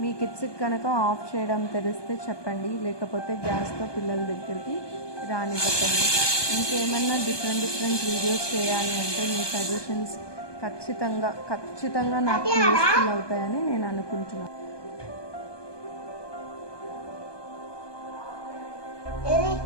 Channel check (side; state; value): right; late; 1.2 ms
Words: మీ కిడ్స్కి కనుక ఆఫ్ చేయడం తెలిస్తే చెప్పండి, లేకపోతే గ్యాస్తో పిల్లల దగ్గరికి రానివ్వకండి. ఇంకేమన్నా డిఫరెంట్ వీడియోస్ చేయాలి అంటే మీ సజెషన్స్ ఖచ్చితంగా నాకు యూస్ఫుల్ అవుతాయని నేను అనుకుంటున్నాను.